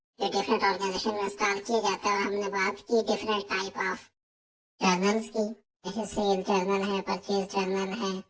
जो डिफरेंट ऑर्गेनाइजेशन में इंस्टॉल किए जाते हैं, और हमने बात की डिफरेंट टाइप ऑफ जर्नल्स की, जैसे सेल जर्नल है, परचेज जर्नल है,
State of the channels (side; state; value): both; identical; correlation 1.00